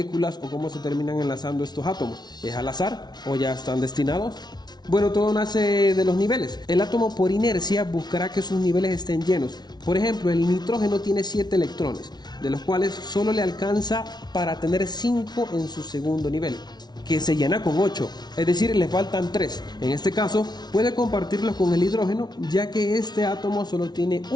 o cómo se terminan enlazando estos átomos? ¿Es al azar o ya están destinados? Bueno, todo nace de los niveles. El átomo por inercia buscará que sus niveles estén llenos. Por ejemplo, el nitrógeno tiene 7 electrones, de los cuales solo le alcanza para tener 5 en su segundo nivel, que se llena con 8, es decir, le faltan 3. En este caso, puede compartirlos con el hidrógeno, ya que este átomo solo tiene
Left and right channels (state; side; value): late; right; 0.20 ms